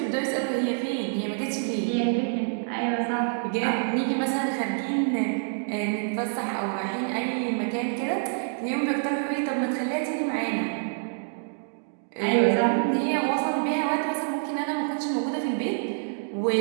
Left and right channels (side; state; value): left; silent; digital silence